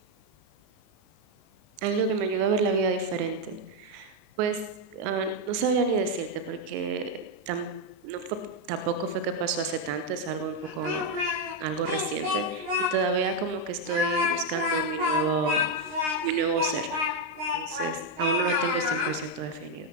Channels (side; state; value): left; late; 19 ms